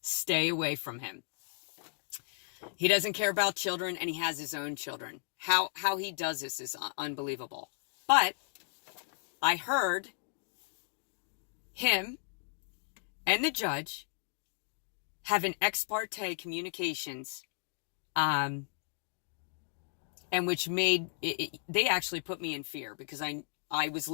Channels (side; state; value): right; silent; digital silence